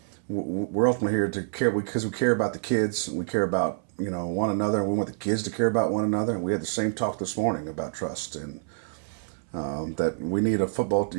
we're ultimately here to care because we care about the kids, and we care about, one another, and we want the kids to care about one another. And we had the same talk this morning about trust and that we need a football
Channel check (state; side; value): silent; left; 60 dB below the other